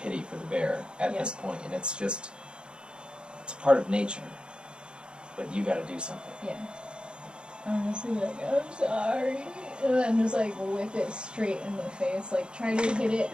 pity for the bear at Yeah. this point, and it's a part of nature. But you got to do something. Yeah. I'm just gonna be like, I'm sorry. And then just like whip it straight in the face. Like try to hit it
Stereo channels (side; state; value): left; late; 0.052 ms